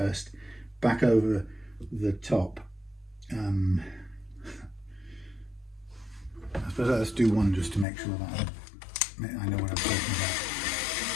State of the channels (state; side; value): drops out; right; at 7.9 s